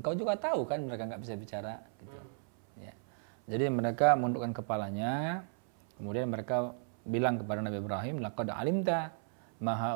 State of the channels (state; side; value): silent; left; 55 dB below the other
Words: juga tahu kan mereka nggak bisa bicara, gitu. Ya. Jadi mereka menundukkan kepalanya, kemudian mereka bilang kepada Nabi Ibrahim, laqad alimta ma